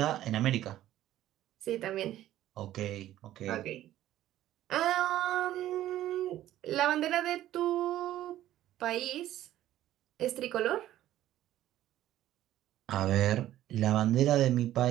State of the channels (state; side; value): quieter; left; 13.4 dB